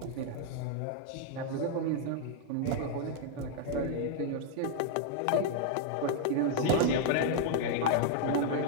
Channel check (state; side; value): different; both; correlation -0.01